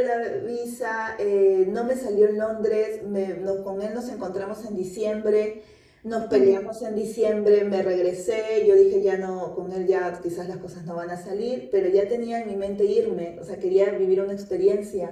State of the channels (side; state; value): both; identical; correlation 1.00